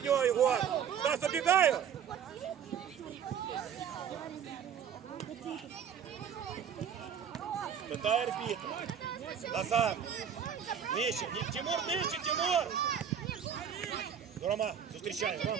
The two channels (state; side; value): quieter; left; 8.1 dB